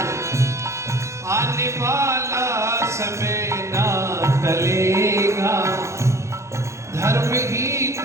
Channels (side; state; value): left; late; 0.14 ms